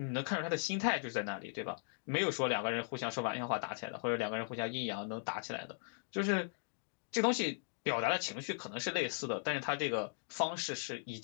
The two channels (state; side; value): silent; right; digital silence